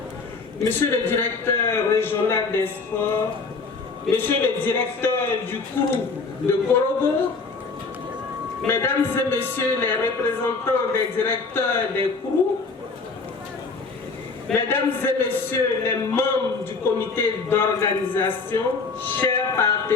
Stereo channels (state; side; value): quieter; right; 4.3 dB